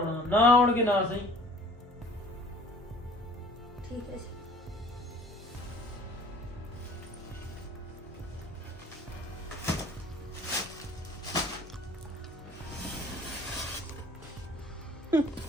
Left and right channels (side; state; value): both; normal; correlation 0.50